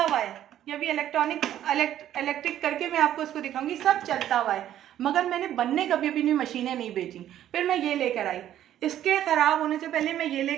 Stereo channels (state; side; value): quieter; left; 11.6 dB